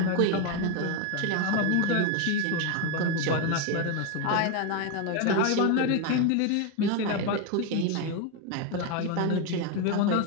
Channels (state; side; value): different; both; correlation 0.02